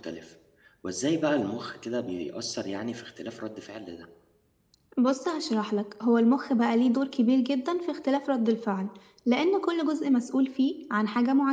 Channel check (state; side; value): identical; both; correlation 1.00